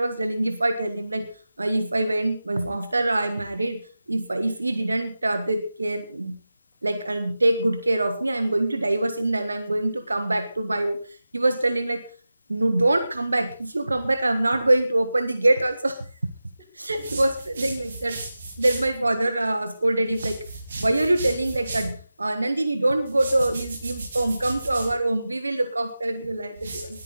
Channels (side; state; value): both; inverted; correlation -0.94